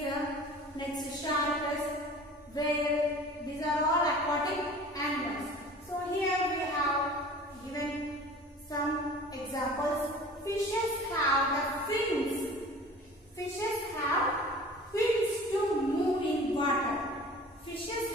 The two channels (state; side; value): normal; both; correlation 0.43